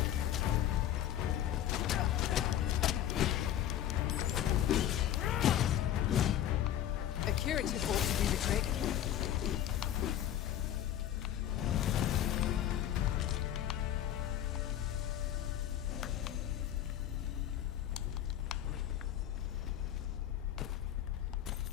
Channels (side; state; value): right; quieter; 11.4 dB